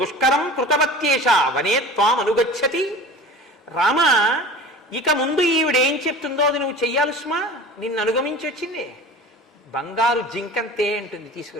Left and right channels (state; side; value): normal; both; correlation 0.38